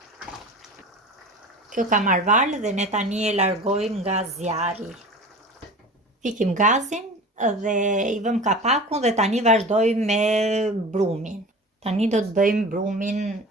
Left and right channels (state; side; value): normal; both; correlation 0.37